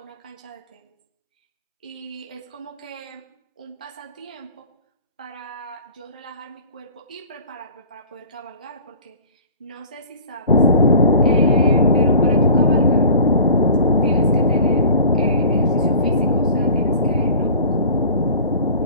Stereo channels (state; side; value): inverted; both; correlation -0.42